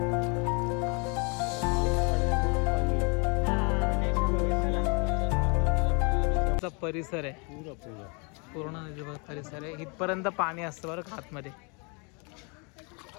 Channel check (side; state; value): right; quieter; 33.2 dB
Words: परिसर आहे पूर्ण नदीचा परिसर आहे, इथपर्यंत पाणी असतं बरं का आतमध्ये.